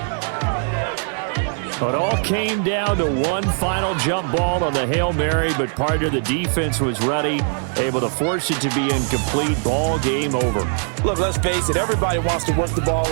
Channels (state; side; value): silent; left; 60 dB below the other